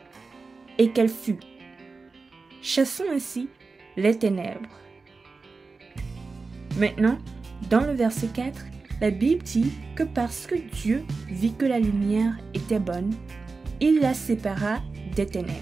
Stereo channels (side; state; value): left; quieter; 4.1 dB